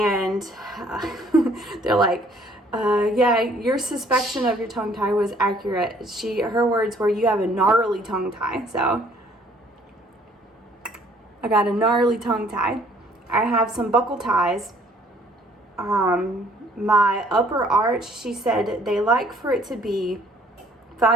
They're like, yeah, your suspicion of your tongue tie was accurate. Her words were, you have a gnarly tongue tie. So I got a gnarly tongue tie. I have some buckle ties. My upper arch, she said they like for it to be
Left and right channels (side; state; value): both; normal; correlation 0.60